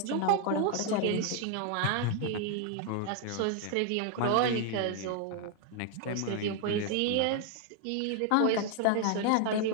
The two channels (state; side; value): different; both; correlation 0.00